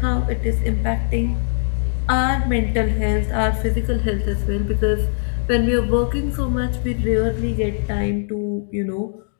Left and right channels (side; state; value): right; silent; digital silence